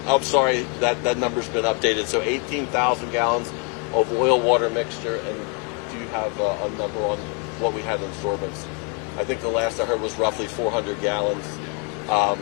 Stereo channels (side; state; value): right; quieter; 32.4 dB